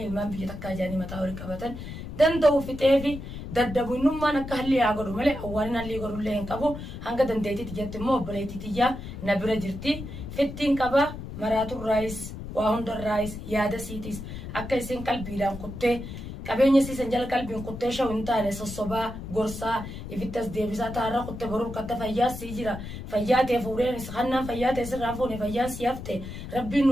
ilmaan biyya takkaa jaanii mataa walii qabatan danda'u fixeefi daddabu innummaan akka halli haa godhu malee awwaalin halli godhullee hin qabu hanga dandeetitti jetti immoo obboleettitiyyaa na bira jirti fittiin qaba maraatuun raayis waa hundarraayis yaada siitis akka isin qalbiidhaan kuttee qabeenya siisan jala qalbiin kuttee shaw hin taane sossobaa gorsaa ifittas deebisaa taarra kuttee boruu katta fayyaa sii jira fayyaa ta'e fuudheen hannaan fayyaa ta'e sirraan fuune fayyaa sii hafte rabbiin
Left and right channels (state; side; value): noise; left; rumble, 9 dB below the sound